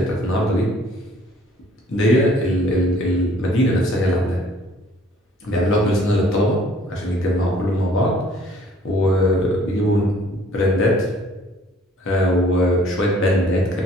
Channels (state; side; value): normal; both; correlation 0.57